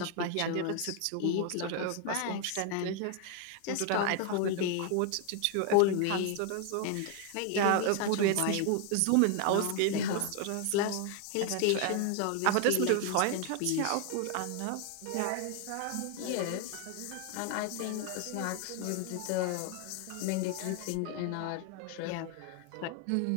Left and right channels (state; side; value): different; both; correlation 0.00